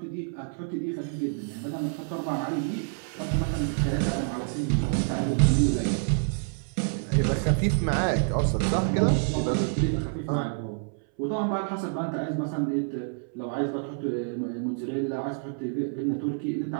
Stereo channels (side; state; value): left; silent; 60 dB below the other